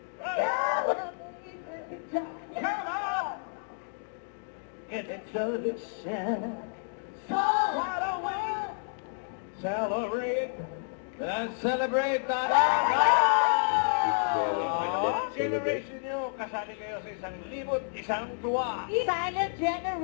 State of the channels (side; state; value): right; silent; digital silence